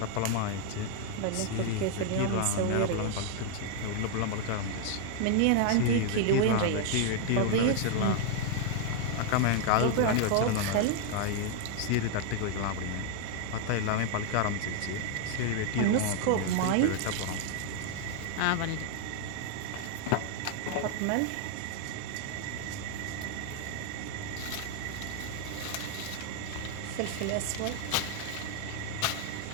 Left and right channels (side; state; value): both; different; correlation 0.00